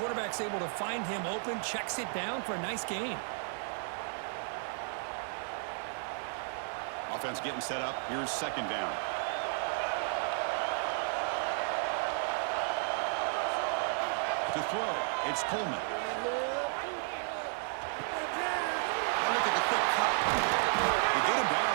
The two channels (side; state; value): left; silent; 56 dB below the other